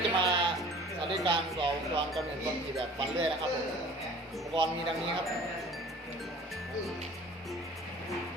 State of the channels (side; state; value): both; normal; correlation 0.46